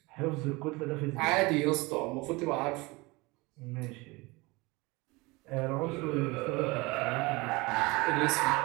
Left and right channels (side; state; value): left; quieter; 24.1 dB